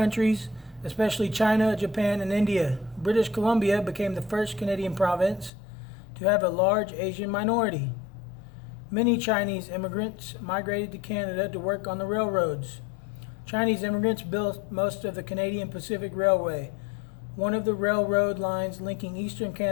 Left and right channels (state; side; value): drops out; right; at 5.5 s